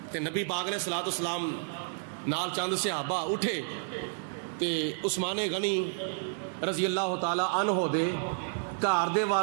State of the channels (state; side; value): silent; left; digital silence